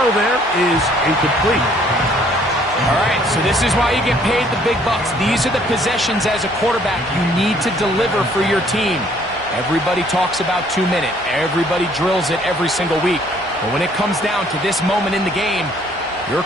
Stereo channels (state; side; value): normal; both; correlation 0.61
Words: there is incomplete. All right, so this is why you get paid the big bucks. These are the possessions as a quarterback you need to deliver for your team. Everybody talks about 2-minute. Everybody drills it every single week. But when it comes down to this moment in the game, your